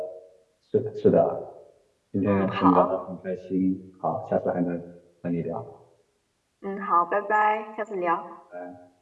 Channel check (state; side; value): identical; both; correlation 1.00